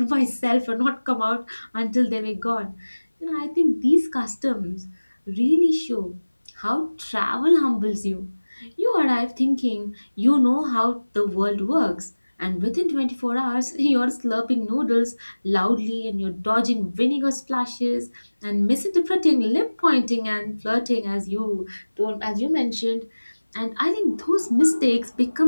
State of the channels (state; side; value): inverted; both; correlation -1.00